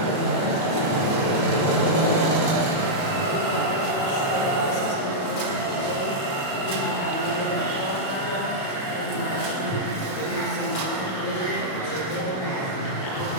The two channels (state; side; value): late; right; 37 ms